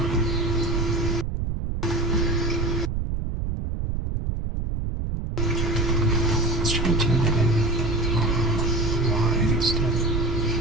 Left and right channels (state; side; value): noise; right; rumble, 2 dB below the sound